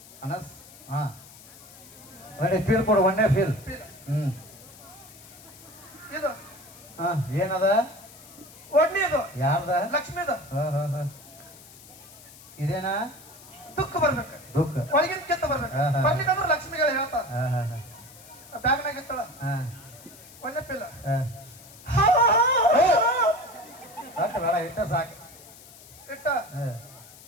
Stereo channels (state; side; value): noise; left; hiss, 20 dB below the sound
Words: ಅನಸ್. ಹಾ ಒಳ್ಳೆ ಫೀಲ್ ಕೊಡು ಒಂದೇ ಫೀಲ್. ಇದು ಹಾ ಏನದ ಒಡ್ನಿದು ಯಾರ್ದ ಲಕ್ಷ್ಮಿದು ಇದೇನಾ ದುಃಖ ಬರ್ಬೇಕು ದುಃಖ ಒಳಗಿನ ಕಿತ್ತ ಬರ್ಬೇಕು. ಬರ್ಲಿಕ್ಕಂದ್ರೆ ಲಕ್ಷ್ಮಿಗಳು ಹೇಳ್ತಾರ ಬ್ಯಾಗ್ನಾಗ ಇತ್ತಳ ಒಳ್ಳೆ ಪಿಲ್ಲ ಬೇಡ ಇಟ್ಟ ಸಾಕು ಇಟ್ಟ